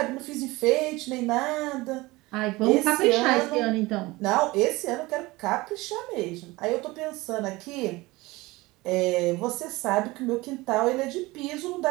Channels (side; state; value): left; quieter; 21.2 dB